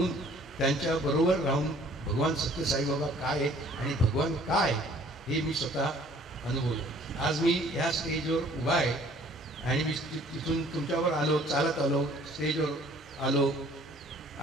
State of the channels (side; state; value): both; normal; correlation 0.55